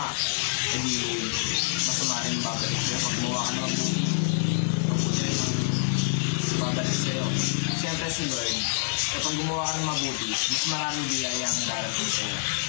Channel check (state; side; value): silent; right; digital silence